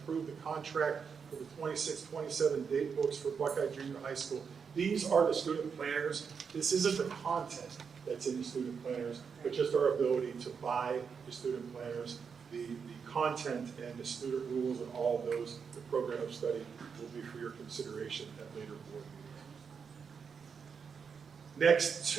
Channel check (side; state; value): left; quieter; 6.2 dB